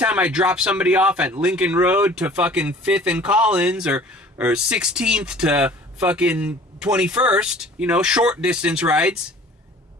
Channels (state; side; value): normal; both; correlation 0.48